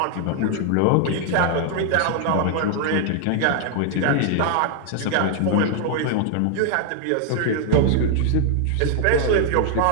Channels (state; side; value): different; both; correlation 0.00